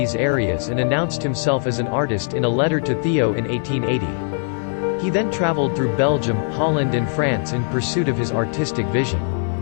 areas and announced himself as an artist in a letter to Theo in 1880. He then traveled through Belgium, Holland and France in pursuit of his artistic vision.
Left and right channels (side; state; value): right; silent; digital silence